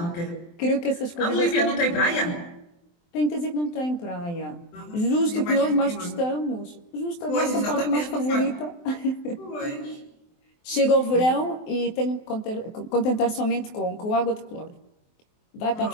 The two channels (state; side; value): late; right; 23 ms